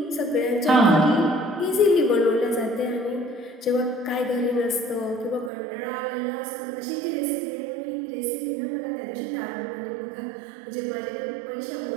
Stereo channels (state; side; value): drops out; left; at 5.5 s